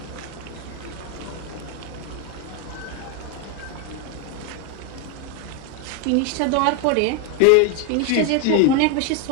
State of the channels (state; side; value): different; both; correlation 0.01